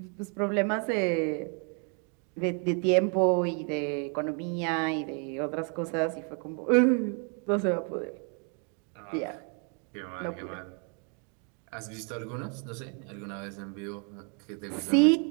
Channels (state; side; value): quieter; left; 38.9 dB